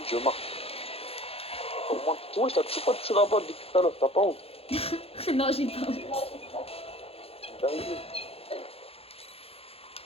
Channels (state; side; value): late; right; 0.28 ms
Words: je marque. Au moins, tu vois, je t'ai toujours pas touché la balle depuis tout à l'heure. T'as pas honte? Non, j'ai pas honte. T'es arrivé.